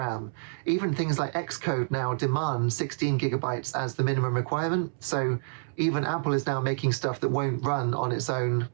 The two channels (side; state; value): left; silent; 59 dB below the other